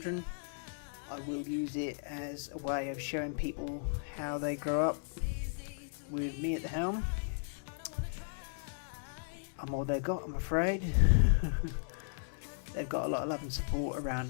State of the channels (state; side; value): silent; right; digital silence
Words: I will use it as a way of showing people how they grow up with me at the helm. I'm all they've got, I'm afraid. They've got a lot of love and support around